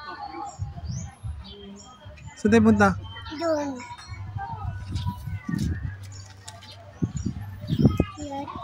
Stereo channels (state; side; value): identical; both; correlation 1.00